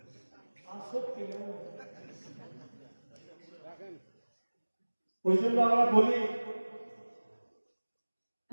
আসক্তি ওই জন্য আমরা বলি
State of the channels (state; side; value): inverted; both; correlation -1.00